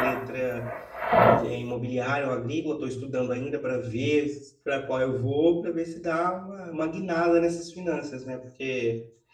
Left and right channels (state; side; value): identical; both; correlation 1.00